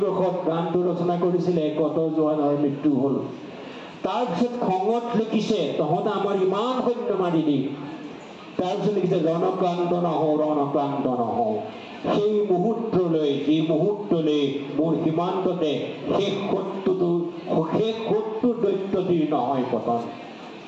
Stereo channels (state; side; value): identical; both; correlation 1.00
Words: গানটো ৰচনা কৰিছিলে কত জোৱানৰ মৃত্যু হ'ল তাৰপিছত খঙত লিখিছে তহঁতে আমাৰ ইমান সৈন্য মাৰি দি তাৰপিছত লিখিছে ৰণক্লান্ত নহওঁ সেই মুহূৰ্তলৈ যি মুহূৰ্তলৈ মোৰ সীমান্ততে শেষ শত্ৰু দৈত্যটিৰ নহয় পতন